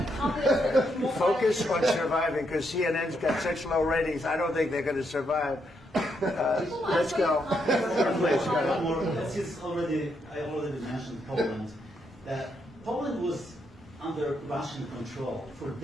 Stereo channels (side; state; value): both; normal; correlation 0.79